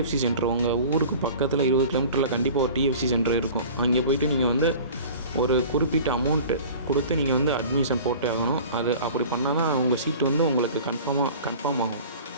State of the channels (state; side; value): inverted; both; correlation -0.41